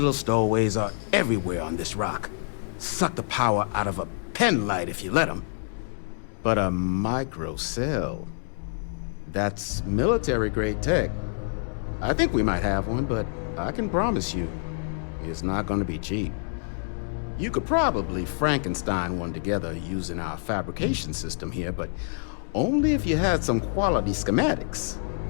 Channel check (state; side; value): silent; right; digital silence